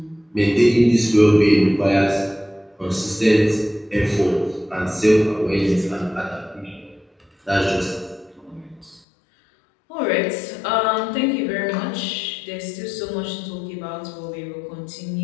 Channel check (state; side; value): drops out; right; at 9.0 s